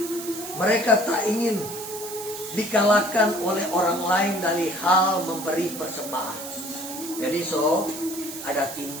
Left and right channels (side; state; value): right; noise; hiss, 10 dB below the sound